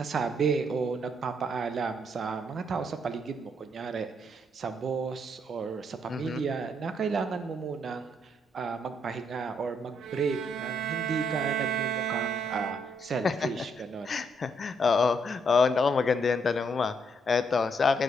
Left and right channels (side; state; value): both; normal; correlation 0.73